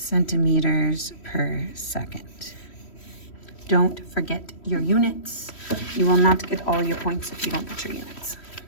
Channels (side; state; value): right; late; 3.1 ms